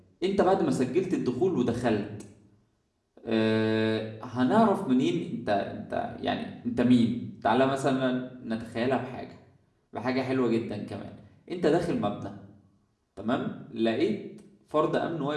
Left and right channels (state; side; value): identical; both; correlation 1.00